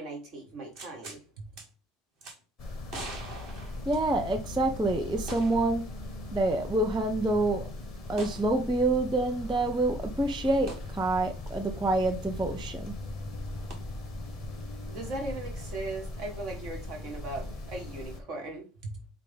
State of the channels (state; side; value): normal; both; correlation 0.63